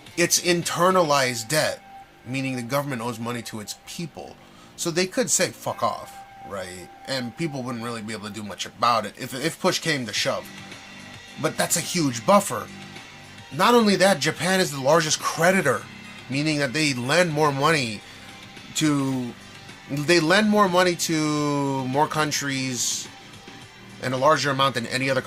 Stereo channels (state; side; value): identical; both; correlation 1.00